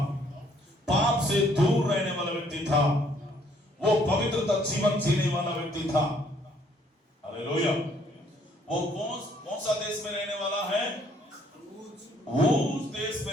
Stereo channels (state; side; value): normal; both; correlation 0.65